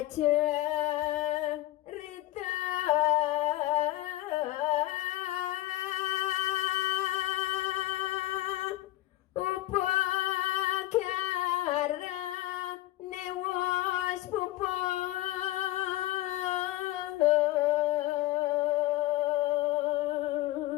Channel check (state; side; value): quieter; right; 16.6 dB